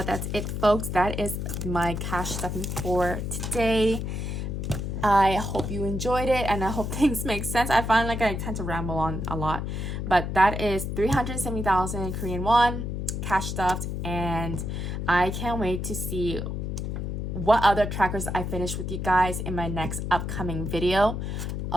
that's it, folks. That is my cash stuffing for today. I hope you enjoyed it, and I hope things make sense. I find like I tend to ramble on a lot, but that is 370,000 Korean won cash stuffed, and I can't wait to see what other trackers I finish with you guys in my next upcoming video.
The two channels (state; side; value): noise; left; hum, 3 dB below the sound